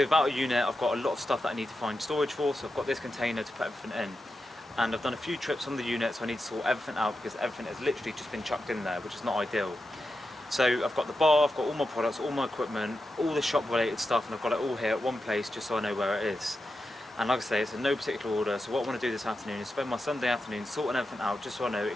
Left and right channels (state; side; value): normal; both; correlation 0.89